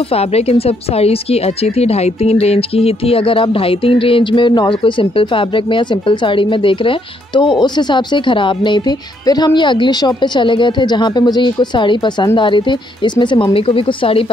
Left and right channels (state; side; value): normal; both; correlation 0.72